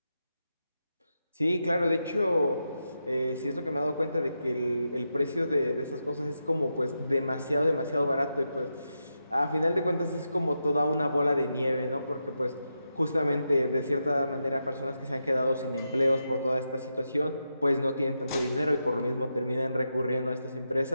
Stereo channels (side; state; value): both; inverted; correlation -0.86